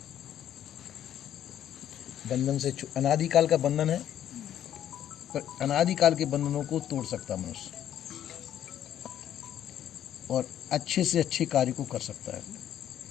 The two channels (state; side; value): quieter; right; 10.8 dB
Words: बंधन से अनादिकाल का बंधन है, पर अनादिकाल के बंधनों को तोड़ सकता है मनुष्य और अच्छे से अच्छे कार्य को कर सकता है,